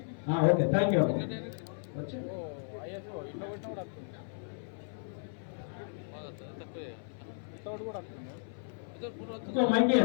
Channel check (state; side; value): silent; right; 55 dB below the other